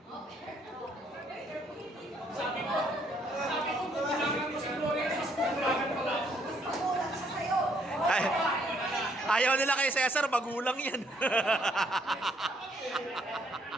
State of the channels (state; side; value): normal; both; correlation 0.68